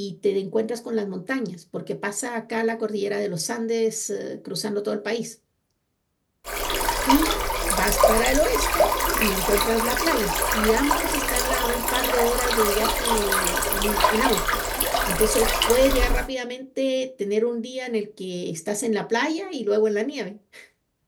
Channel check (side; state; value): both; identical; correlation 1.00